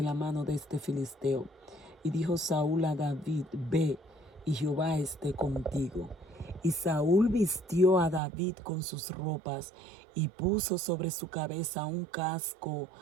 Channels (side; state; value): left; drops out; at 8.2 s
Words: la mano de este filisteo. Y dijo Saúl a David: ve, y Jehová esté contigo. Y Saúl vistió a David con sus ropas y puso sobre su cabeza un casco